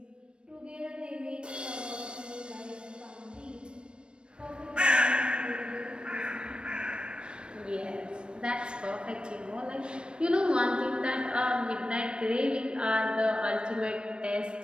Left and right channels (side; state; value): left; late; 0.055 ms